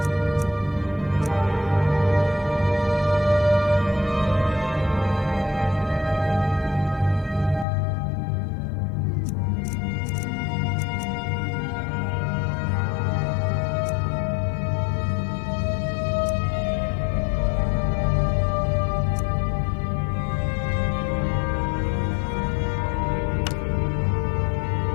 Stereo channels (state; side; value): drops out; right; at 7.7 s